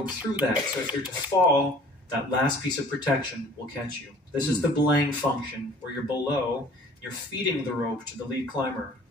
through that. So if you're to fall, that last piece of protection will catch you. This is the belaying function, where you're below, you're feeding the rope to the lead climber.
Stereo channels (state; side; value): normal; both; correlation 0.50